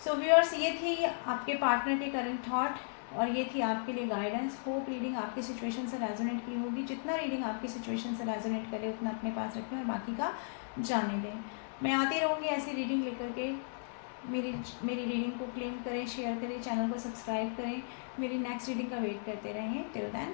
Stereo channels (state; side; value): silent; right; 54 dB below the other